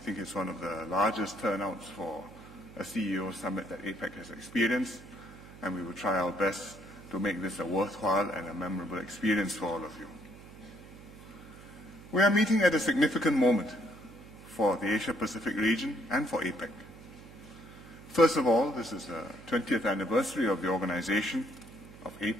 it's one of the largest turnouts for a CEO Summit that APEC has experienced, and we will try our best to make this a worthwhile and a memorable experience for all of you. We are meeting at a significant moment for the Asia-Pacific region and for APEC. First of all, this is the 20th anniversary of the organization of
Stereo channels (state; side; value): noise; right; hum, 18 dB below the sound